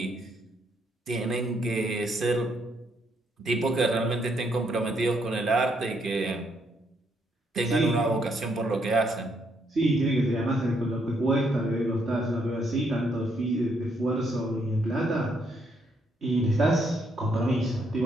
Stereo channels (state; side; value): normal; both; correlation 0.74